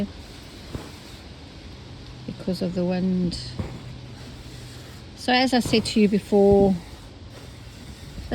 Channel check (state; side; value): identical; both; correlation 1.00